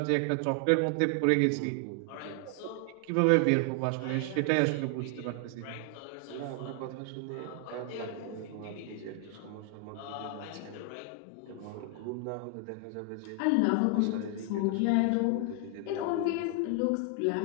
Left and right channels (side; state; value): both; different; correlation 0.00